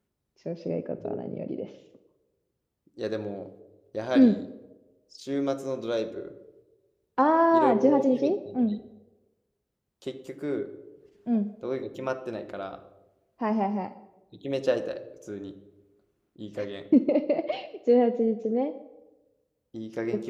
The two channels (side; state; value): both; identical; correlation 1.00